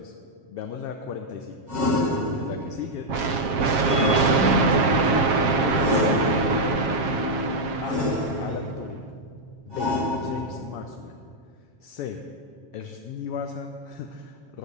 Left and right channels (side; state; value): left; late; 7.4 ms